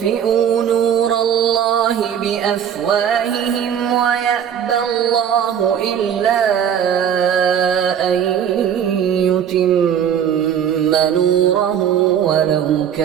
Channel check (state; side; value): quieter; left; 8.9 dB